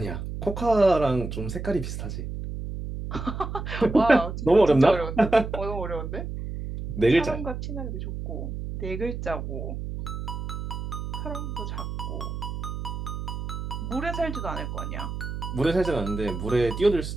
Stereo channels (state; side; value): noise; right; hum, 6 dB below the sound